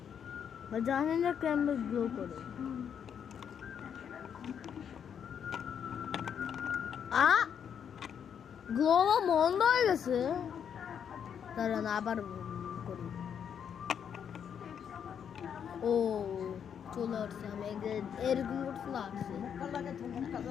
জানি না কেমন গ্লো করে। গ্লো বন্ধ হয়ে গেছে, দাঁড়ান আবার করি। ও চলে আসছে, আমি এরকম করছিল আসছে,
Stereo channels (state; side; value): quieter; right; 8.0 dB